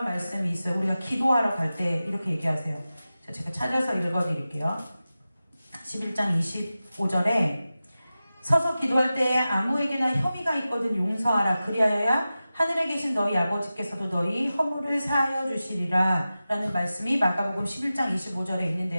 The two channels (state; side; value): inverted; both; correlation -0.94